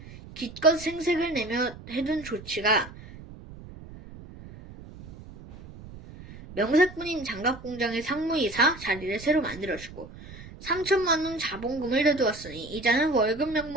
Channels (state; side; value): noise; right; rumble, 16 dB below the sound